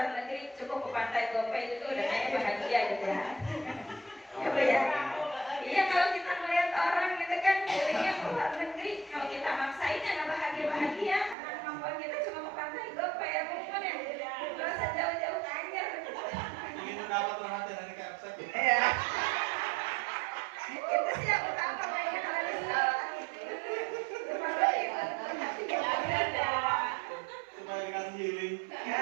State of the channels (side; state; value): left; drops out; at 11.4 s